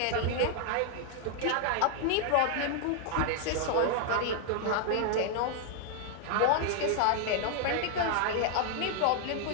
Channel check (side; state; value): both; different; correlation 0.00